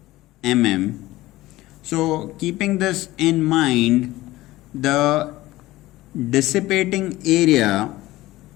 mm. So keeping this in mind, the dissipating area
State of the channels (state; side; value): quieter; right; 17.7 dB